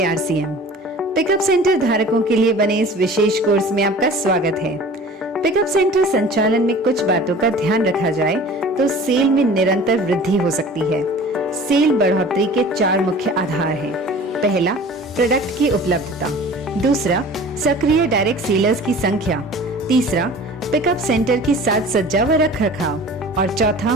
RCM. Pickup centre धारकों के लिए बने इस विशेष कोर्स में आपका स्वागत है। पिकअप सेंटर संचालन में कुछ बातों का ध्यान रखा जाए तो सेल में निरंतर वृद्धि हो सकती है। सेल बढ़ोतरी के 4 मुख्य आधार हैं। पहला, प्रोडक्ट की उपलब्धता। दूसरा, सक्रिय डायरेक्ट सेलर्स की संख्या। तीसरा, पिकअप सेंटर की साज सज्जा व रख रखाव। और चौथा,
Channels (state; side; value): normal; both; correlation 0.43